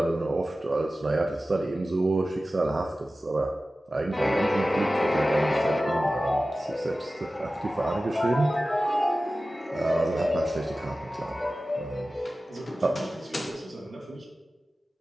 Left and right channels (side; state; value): both; normal; correlation 0.95